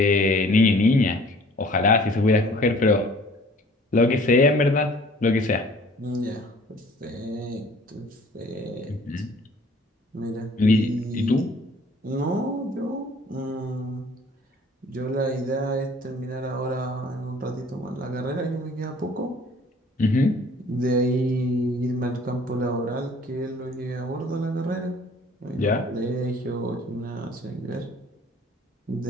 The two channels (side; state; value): both; normal; correlation 0.53